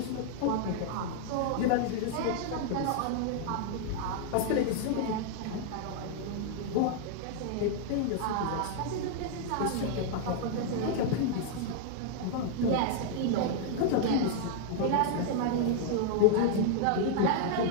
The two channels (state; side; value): different; both; correlation -0.01